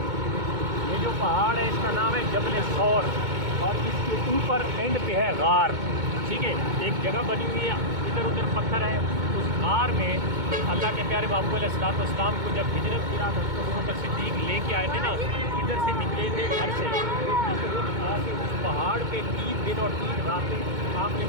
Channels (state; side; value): late; left; 2.2 ms